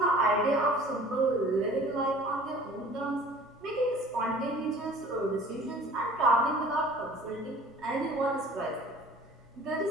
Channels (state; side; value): noise; right; rumble, 30 dB below the sound